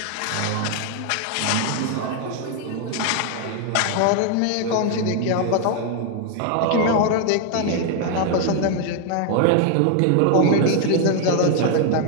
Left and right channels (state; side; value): different; both; correlation 0.00